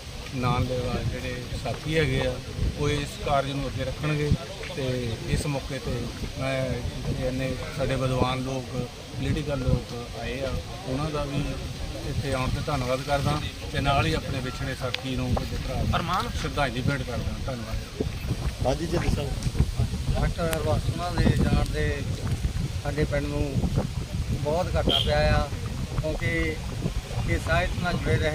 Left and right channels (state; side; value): identical; both; correlation 1.00